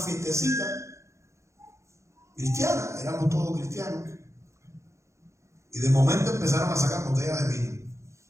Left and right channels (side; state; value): left; late; 0.14 ms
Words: cristiana, éramos todos cristianos, y de momento empezaron a sacar botellas de vino.